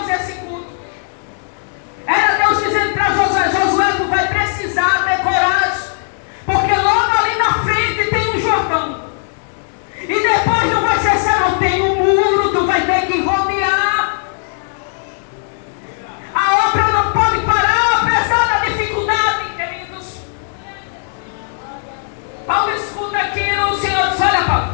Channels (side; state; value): right; silent; digital silence